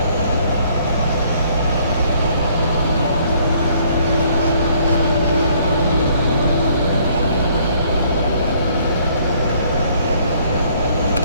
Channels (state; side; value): inverted; both; correlation -0.63